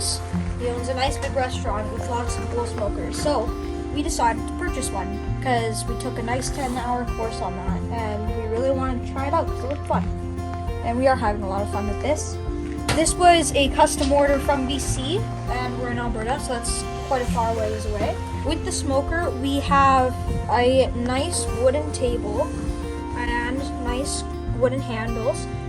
He owns a nice big restaurant with lots of cool smokers. So we decided to purchase one because we took a nice 10-hour course on that, and we really wanted to try it out because it looked fun. And we are having a lot of fun with this. This was a custom order from BC, and we're in Alberta, so that's quite a far ways away. With the smoker, we have a nice wooden table and nice wooden handles,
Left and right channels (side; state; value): both; identical; correlation 1.00